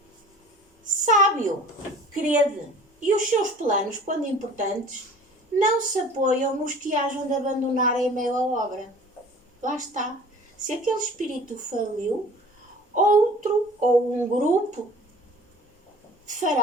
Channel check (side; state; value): both; normal; correlation 0.46